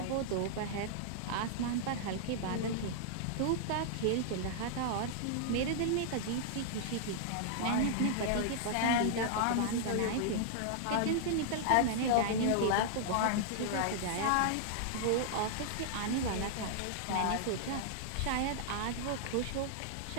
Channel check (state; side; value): different; both; correlation -0.01